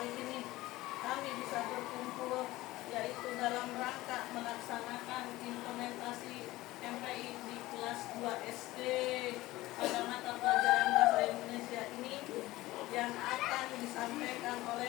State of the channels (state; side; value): quieter; right; 18.1 dB